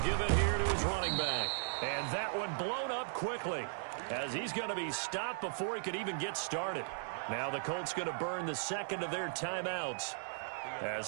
give it here to his running back. And that one blown up quickly as he's going to be stopped before he could even get started. Now the Colts going to burn the 2nd of their timeouts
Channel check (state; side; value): silent; left; digital silence